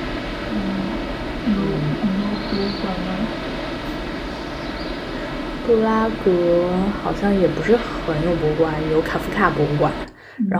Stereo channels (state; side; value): identical; both; correlation 1.00